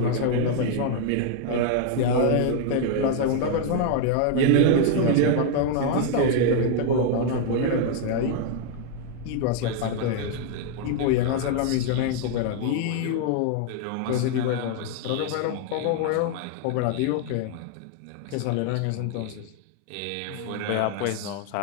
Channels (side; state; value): both; different; correlation 0.00